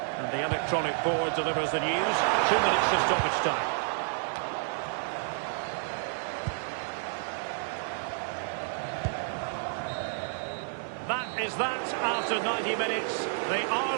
And the electronic board delivers the news. 2 minutes of stoppage time. That is that after 90 minutes. They are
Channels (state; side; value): silent; left; 58 dB below the other